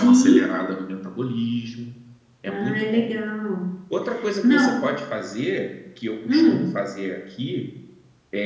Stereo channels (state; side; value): identical; both; correlation 1.00